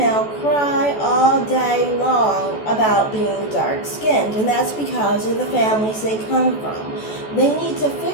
cry all day long about being dark-skinned, and that's because of the families they come from. They need to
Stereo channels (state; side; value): late; right; 14 ms